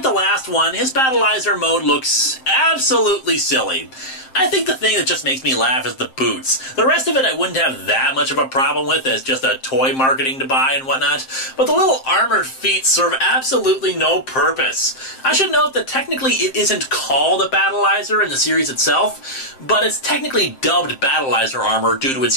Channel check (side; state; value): right; late; 7.6 ms